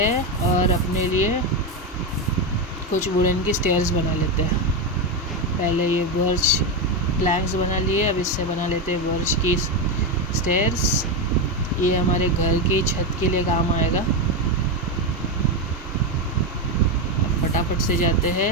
और अपने लिए कुछ वुडन की स्टेयर्स बना लेते हैं। पहले ये बर्च प्लैंक्स बना लिए, अब इससे बना लेते हैं बर्च की स्टेयर्स। ये हमारे घर की छत के लिए काम आएगा। अब फटाफट से जाते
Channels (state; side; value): normal; both; correlation 0.10